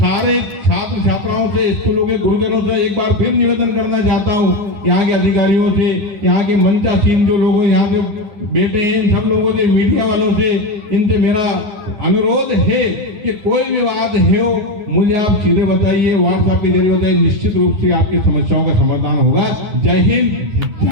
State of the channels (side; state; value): left; late; 9.7 ms